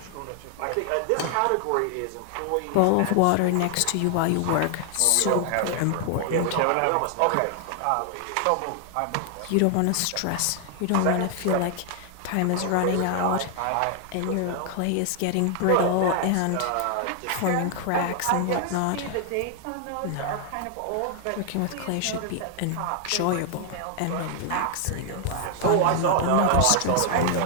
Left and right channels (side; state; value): both; different; correlation 0.00